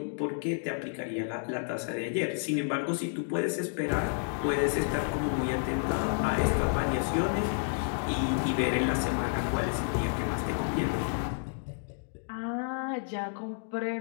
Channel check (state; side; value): silent; right; digital silence